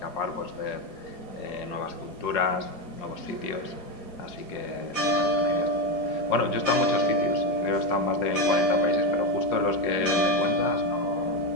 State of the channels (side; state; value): right; late; 4.8 ms